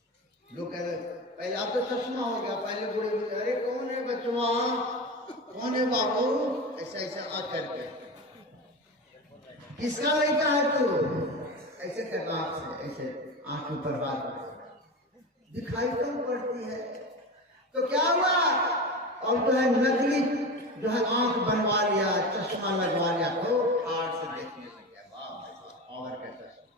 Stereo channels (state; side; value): normal; both; correlation 0.25